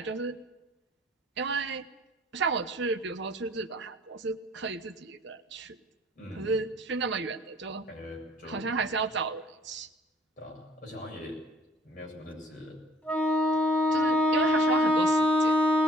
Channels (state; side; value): normal; both; correlation 0.55